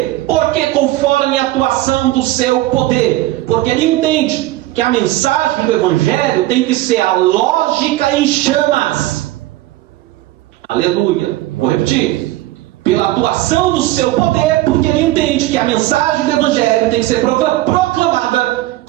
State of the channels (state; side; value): quieter; left; 16.5 dB